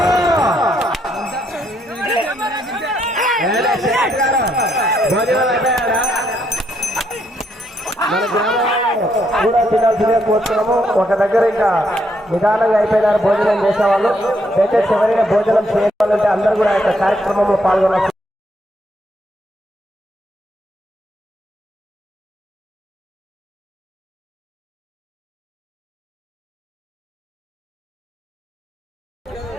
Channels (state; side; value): normal; both; correlation 0.74